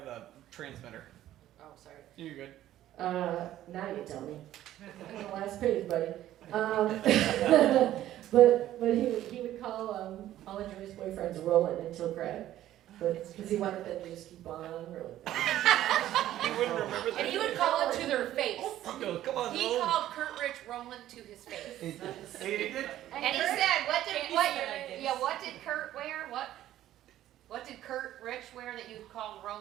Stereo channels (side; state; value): left; quieter; 13.2 dB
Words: transmitter. Oh, sorry. You're good. Now you tell me. On the last page, buddy. But he would call all of Joy's boyfriends Roland until Craig. But because he wanted them to just keep on rolling. He wouldn't remember that. And he would call it to their face. He goes, come on, He Roland. called Kurt Rich Roland to his face. He did. And he said, what did Kurt wear? What did Kurt Rich wear that you called